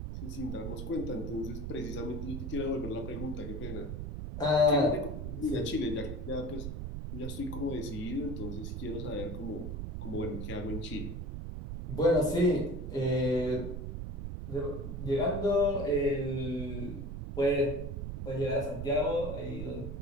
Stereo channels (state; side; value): noise; right; rumble, 5 dB below the sound